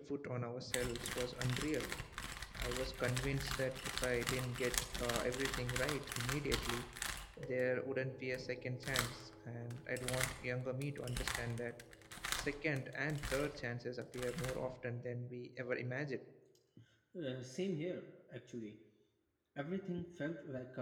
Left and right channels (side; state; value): both; identical; correlation 1.00